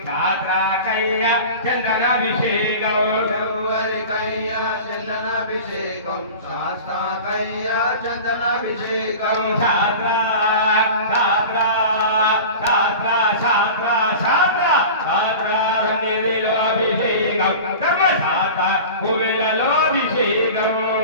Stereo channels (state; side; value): inverted; both; correlation -0.35